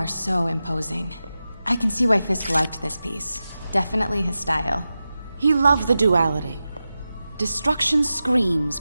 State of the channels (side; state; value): both; inverted; correlation -0.93